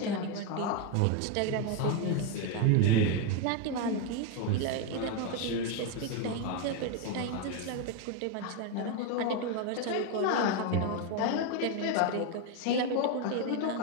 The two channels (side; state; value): both; different; correlation 0.02